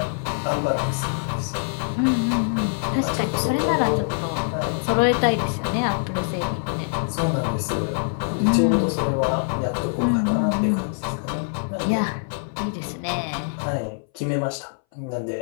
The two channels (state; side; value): silent; right; 60 dB below the other